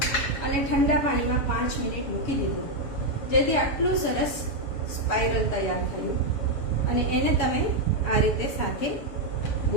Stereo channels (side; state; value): right; late; 7.1 ms